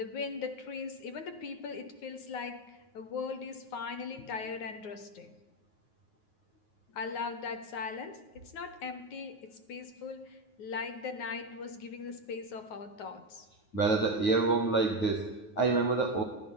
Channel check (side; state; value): right; late; 9.4 ms